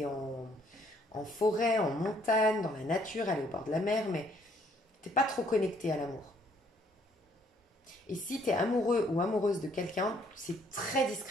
en forêt, en montagne, dans la nature, aller au bord de la mer, mais t'es pas trop connecté à l'amour. Et si t'es amoureux ou amoureuse de quelqu'un, c'est très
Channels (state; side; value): normal; both; correlation 0.65